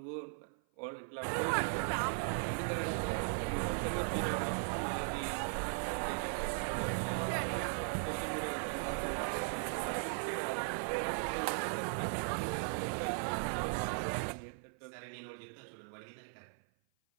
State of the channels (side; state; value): left; silent; 53 dB below the other